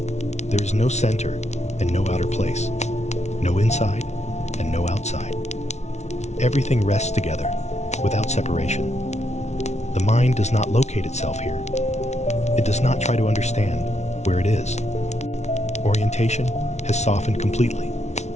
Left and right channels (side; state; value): right; late; 0.32 ms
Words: There is no center and no outer place, no inside and no outside. Everything rests together, without separation. The mind does not locate itself here. It does not try to understand where it is. Orientation has softened completely.